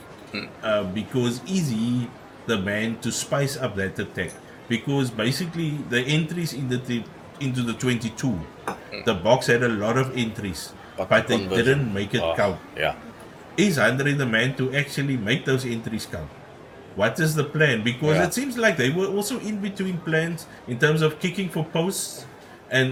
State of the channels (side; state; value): both; identical; correlation 1.00